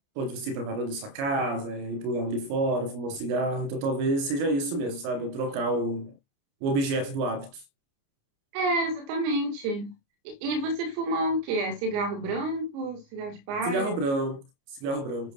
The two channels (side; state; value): left; late; 29 ms